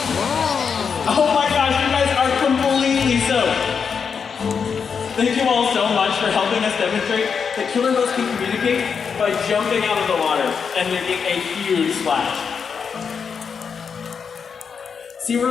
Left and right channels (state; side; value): quieter; right; 6.2 dB